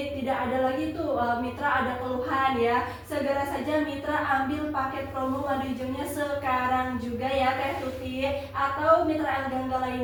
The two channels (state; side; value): identical; both; correlation 1.00